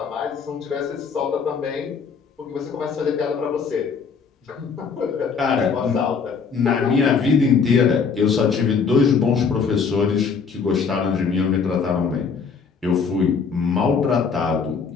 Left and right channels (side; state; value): right; quieter; 5.7 dB